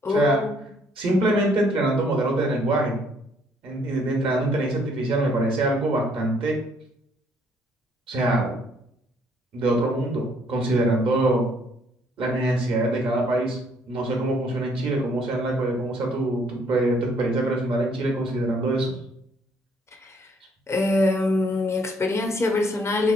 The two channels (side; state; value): both; normal; correlation 0.66